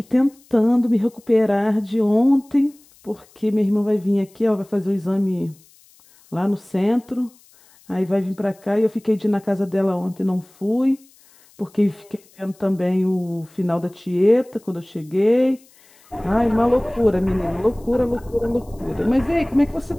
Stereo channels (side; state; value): left; noise; hiss, 29 dB below the sound